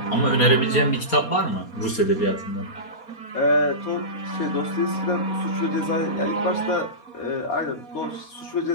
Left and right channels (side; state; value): right; late; 4.2 ms